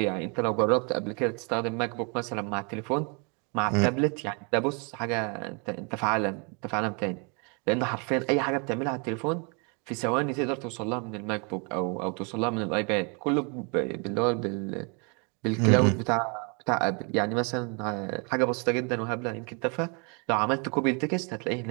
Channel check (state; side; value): quieter; left; 34.3 dB